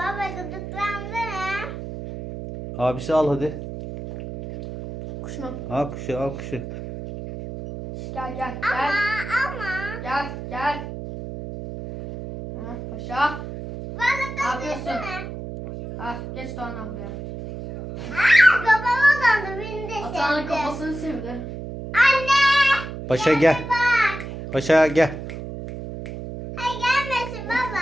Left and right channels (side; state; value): right; noise; hum, 9 dB below the sound